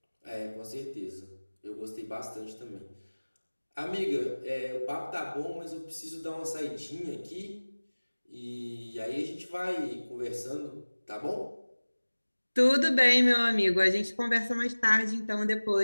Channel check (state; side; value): inverted; both; correlation -1.00